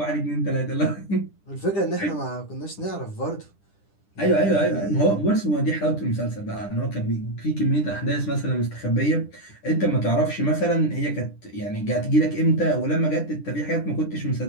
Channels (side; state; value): right; late; 10 ms